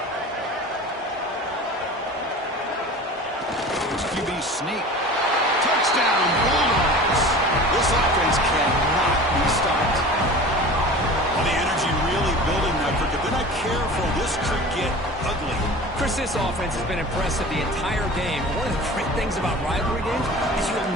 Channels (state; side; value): normal; both; correlation 0.38